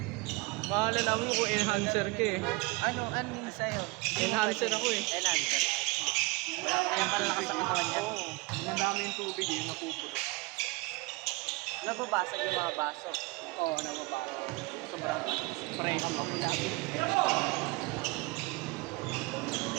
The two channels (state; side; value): quieter; left; 24.8 dB